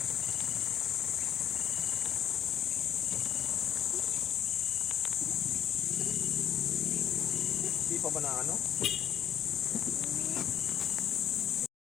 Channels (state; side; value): quieter; right; 9.9 dB